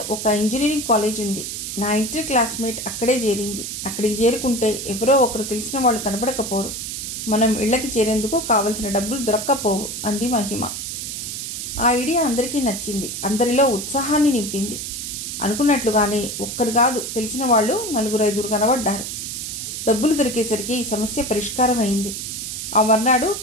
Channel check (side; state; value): right; noise; hiss, 6 dB below the sound